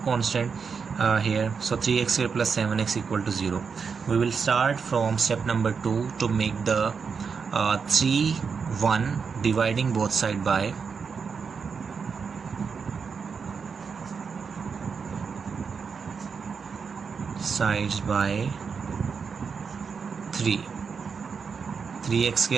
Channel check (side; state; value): left; quieter; 5.8 dB